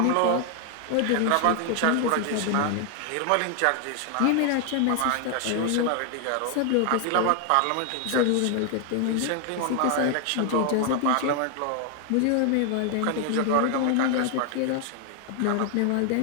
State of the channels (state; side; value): different; both; correlation 0.00